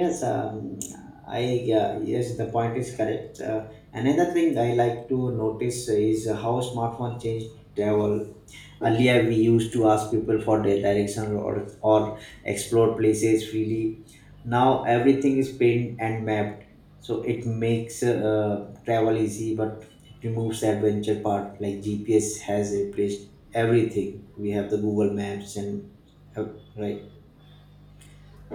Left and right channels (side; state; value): both; identical; correlation 1.00